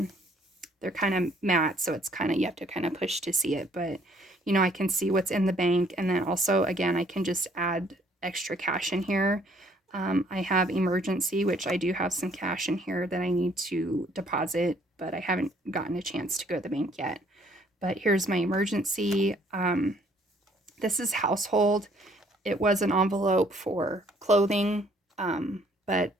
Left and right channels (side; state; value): both; normal; correlation 0.63